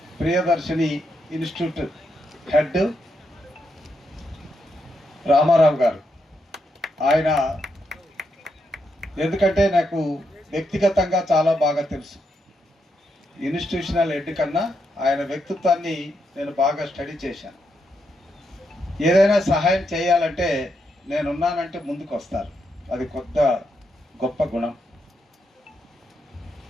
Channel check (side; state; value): both; normal; correlation 0.81